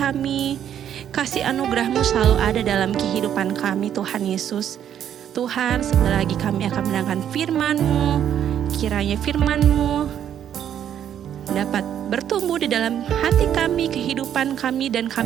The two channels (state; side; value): quieter; left; 9.8 dB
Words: Kasih anugerah-Mu selalu ada dalam kehidupan kami Tuhan Yesus. Tuhan, sebentar lagi kami akan mendengarkan firman-Mu. Kiranya firman-Mu dapat bertumbuh di dalam hati kami, kehidupan kami, dan